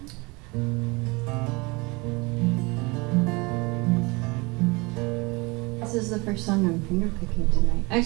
This is the first song I'm fingerpicking tonight.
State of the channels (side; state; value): left; quieter; 26.1 dB